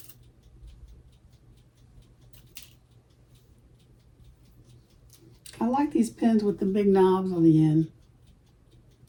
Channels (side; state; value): both; identical; correlation 1.00